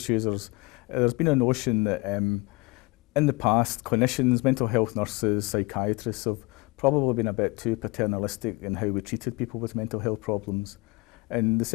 users, there's been a notion that in the past clinicians, mental health nurses, psychiatrists have probably been a bit too paternalistic in how we treated people with mental health problems. And the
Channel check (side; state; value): right; quieter; 24.7 dB